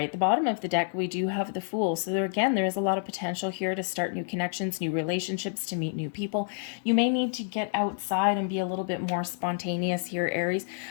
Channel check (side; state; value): right; silent; digital silence